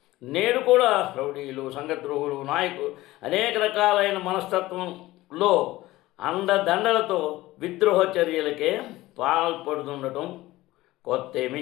నేడు కూడా రౌడీలు, సంఘద్రోహులు, నాయకులు అనేక రకాలైన మనస్తత్వంలో అండదండలతో విద్రోహ చర్యలకే పాల్పడుతుండటం కొత్త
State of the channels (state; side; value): quieter; right; 17.7 dB